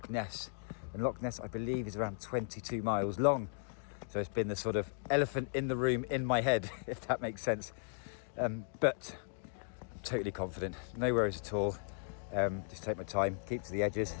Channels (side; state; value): right; silent; digital silence